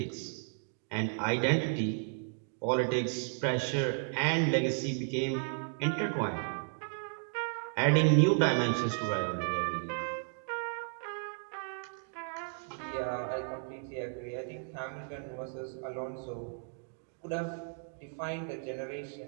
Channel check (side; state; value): left; silent; 55 dB below the other